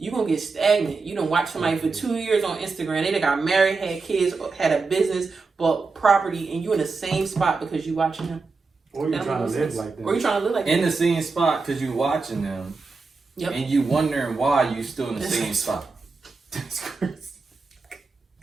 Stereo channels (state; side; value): quieter; left; 4.2 dB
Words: going to get stagnant. You don't watch somebody for 2 years on Instagram. They done got married, had kids, had a business, bought property, and you in the same spot because you watching them. Or you're trying to live like that. Or you trying to live like that. In the same spot because you watching them. Yep. And you wondering why you still in the same spot. That's crazy.